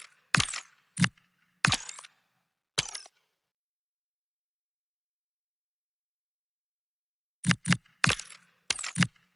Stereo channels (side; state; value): both; identical; correlation 1.00